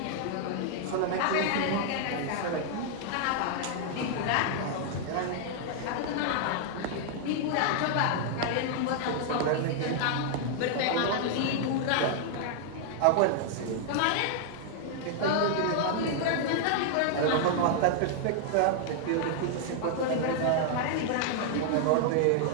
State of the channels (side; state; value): both; different; correlation 0.00